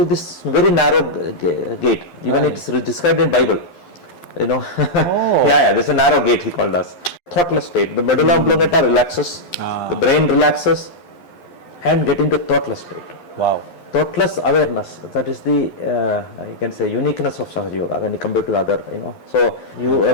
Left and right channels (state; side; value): late; right; 12 ms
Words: this very narrow gate, even it is described in Bible, you know. Oh. Yeah, there's a narrow gate, he called us. Thoughtless state. The medulla oblongata relaxes, the brain relaxes, and get into thoughtless state. Wow. Thoughtless awareness, that is the, you can say, uniqueness of Sahaja Yoga when you compare to the other, you know. So, a